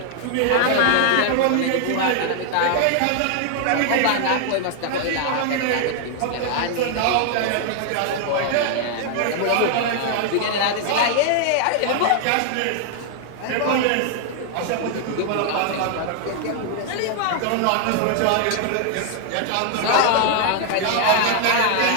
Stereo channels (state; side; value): different; both; correlation 0.00